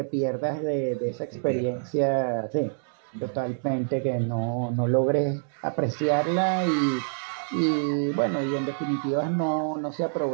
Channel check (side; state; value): left; silent; digital silence